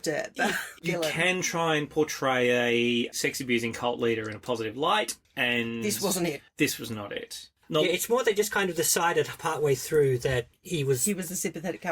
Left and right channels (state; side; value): identical; both; correlation 1.00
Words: it. You can try and portray a sex-abusing cult leader in a positive light, and this wasn't it. This was not it. Yeah, it's more they just kind of decided partway through that he was a sympathetic